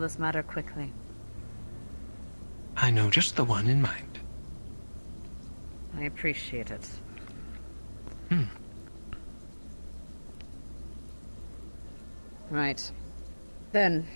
this matter quickly. I know just the one in mind. I appreciate it. Right. Then,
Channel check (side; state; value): both; inverted; correlation -1.00